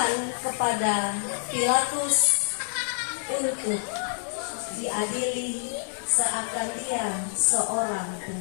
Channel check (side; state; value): right; silent; digital silence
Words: kepada Pilatus untuk diadili seakan dia seorang